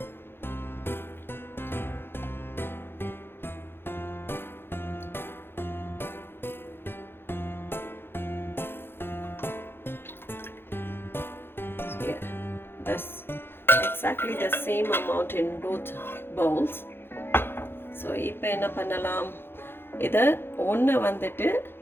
Yeah, that's exactly the same amount in both bowls. So இப்போ என்ன பண்ணலாம், இதை ஒன்று வந்துட்டு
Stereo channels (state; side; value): late; right; 0.11 ms